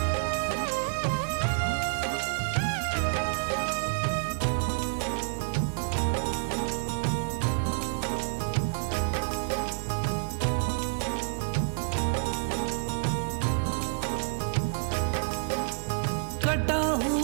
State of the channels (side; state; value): left; silent; 59 dB below the other